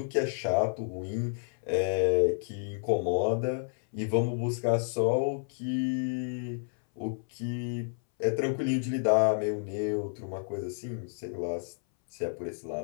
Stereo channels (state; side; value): silent; right; 58 dB below the other